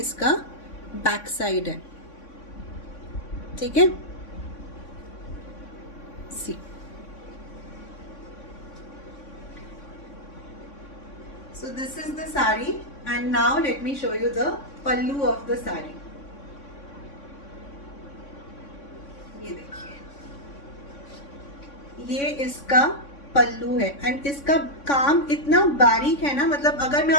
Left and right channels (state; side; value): late; right; 3.6 ms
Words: बैक साइड है, ठीक है। सी, so this is the sari and now let me show you the pallu of the sari। ये देखिए, ये इसका पल्लू है एंड इसका काम इतना बारीक है ना, मतलब अगर मैं